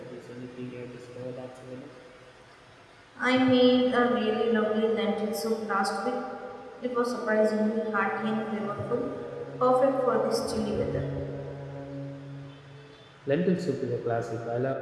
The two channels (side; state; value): both; identical; correlation 1.00